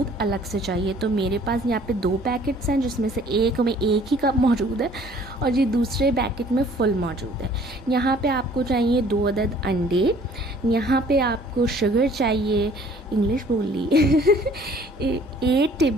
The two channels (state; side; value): normal; both; correlation 0.55